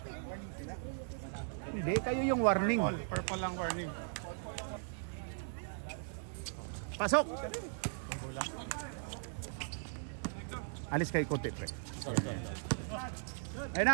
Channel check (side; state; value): left; silent; 52 dB below the other